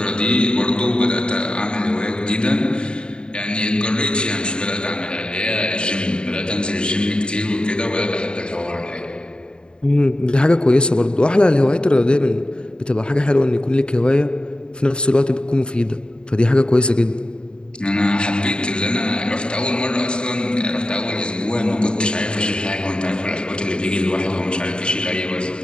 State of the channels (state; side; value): late; right; 0.050 ms